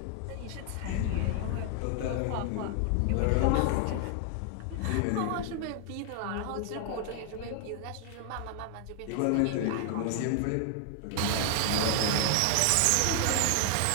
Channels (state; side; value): different; both; correlation 0.00